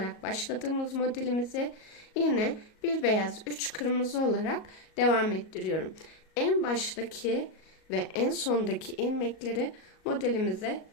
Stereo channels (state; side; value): late; right; 37 ms